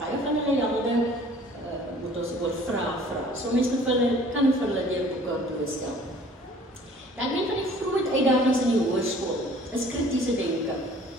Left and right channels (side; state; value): both; normal; correlation 0.52